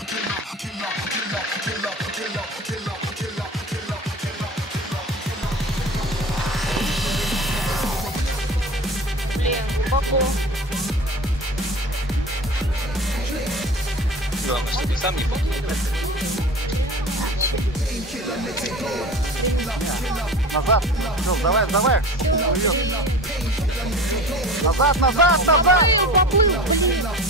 killer, killer, killer, killer, killer, killer, killer, killer. Блин, глубоко. Главное, что ты сам не попал. Назад! Ну, давай, давай! Назад, назад, назад! Поплыл, блин!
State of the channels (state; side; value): normal; both; correlation 0.36